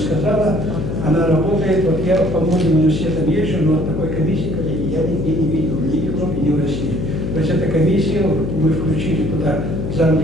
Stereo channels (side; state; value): left; noise; hum, 4 dB below the sound